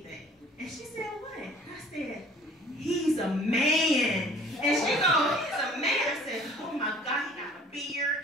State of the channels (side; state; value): both; normal; correlation 0.51